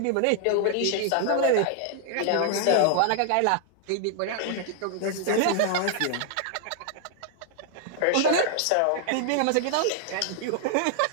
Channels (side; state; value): both; different; correlation 0.00